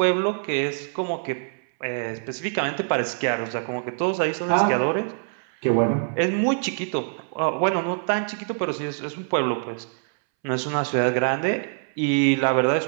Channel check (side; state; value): left; silent; 62 dB below the other